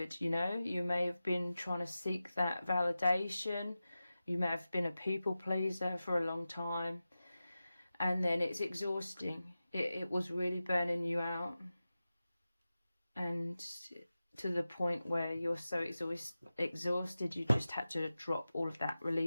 you know, you may have been trying to seek that validation, you may have been a people pleaser for a long time, and then it's exhausting. It was really burning you out, and to the point where you're so exhausted, you just had to drop all of that,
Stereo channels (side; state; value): both; inverted; correlation -0.94